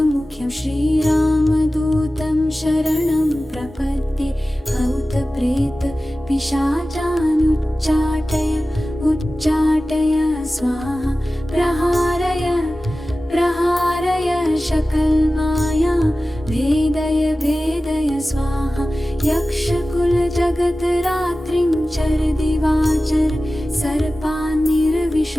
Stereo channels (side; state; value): both; normal; correlation 0.96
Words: श्रीरामदूतं शरणं प्रपद्ये भूतप्रेत पिशाचानुच्चाटय उच्चाटय स्वाहा प्रहारय प्रहारय सकलमायां भेदय भेदय स्वाहा यक्षकुलजगतरात्रिं चर दिवाचर